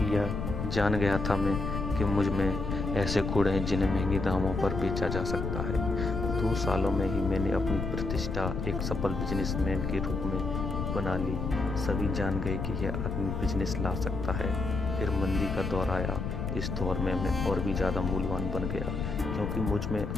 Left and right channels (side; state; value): left; noise; rumble, 3 dB below the sound